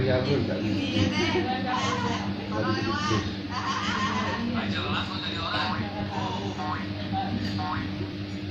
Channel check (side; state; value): both; identical; correlation 1.00